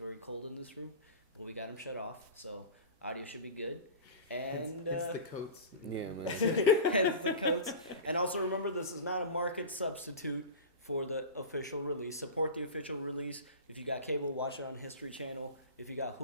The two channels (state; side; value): inverted; both; correlation -0.32